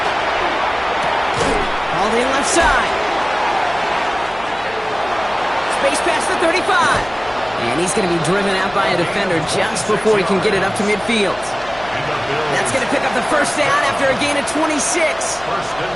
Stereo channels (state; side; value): noise; left; hum, 20 dB below the sound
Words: Hauled in left side. Space past the 35. And he's going to be driven out by a defender just before he can get it up to midfield. That's going to pick up the first down after a gain of 26.